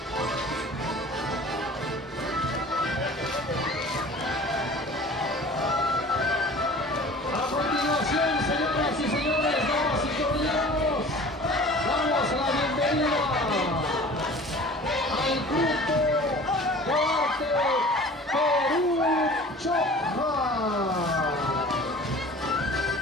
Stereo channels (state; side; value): normal; both; correlation 0.43